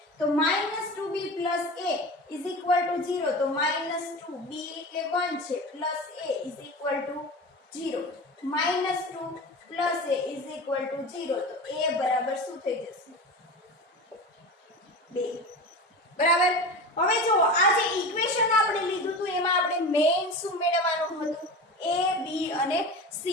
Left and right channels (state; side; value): normal; both; correlation 0.30